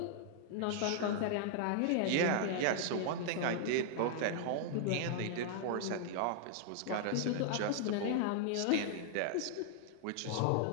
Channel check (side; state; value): both; different; correlation -0.01